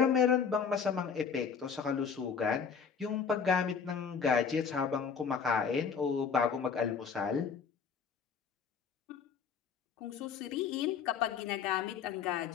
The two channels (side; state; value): right; quieter; 6.3 dB